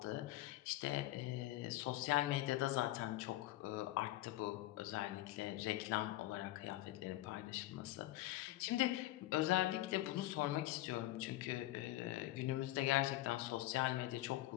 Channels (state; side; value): quieter; right; 16.5 dB